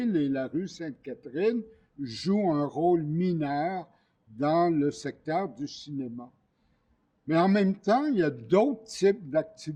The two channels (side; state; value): both; identical; correlation 1.00